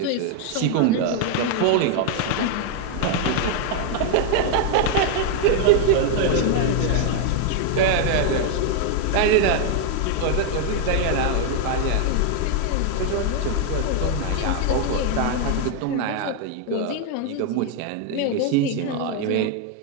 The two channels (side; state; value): both; different; correlation 0.00